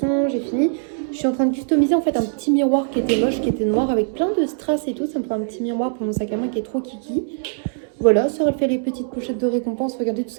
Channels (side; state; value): left; silent; digital silence